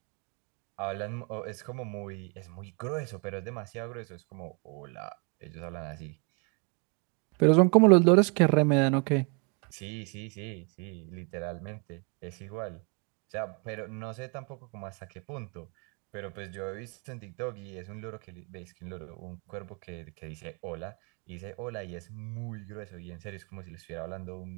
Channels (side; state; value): left; quieter; 34.7 dB